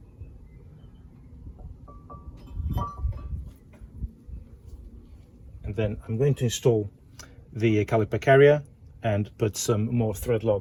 And then I'm going to install the caliper carrier and put some more thread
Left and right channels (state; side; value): identical; both; correlation 1.00